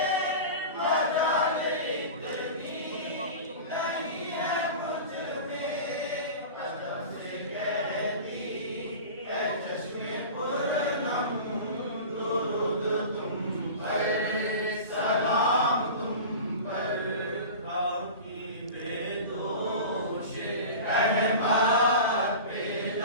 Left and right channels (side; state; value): both; inverted; correlation -0.33